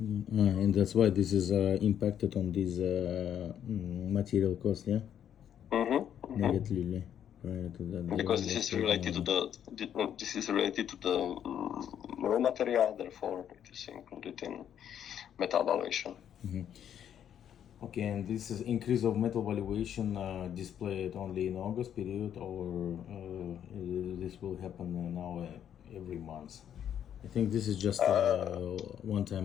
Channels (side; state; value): right; quieter; 9.5 dB